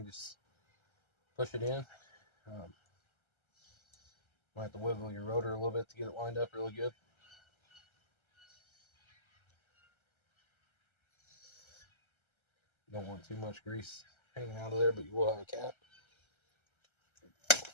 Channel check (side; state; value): right; late; 1.3 ms